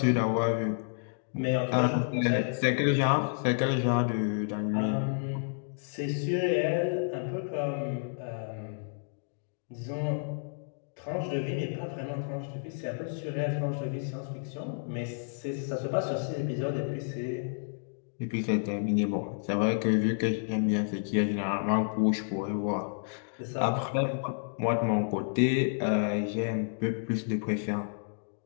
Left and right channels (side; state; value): right; silent; digital silence